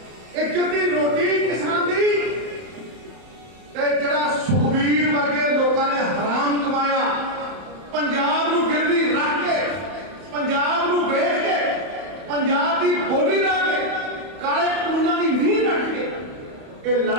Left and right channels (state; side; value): late; left; 31 ms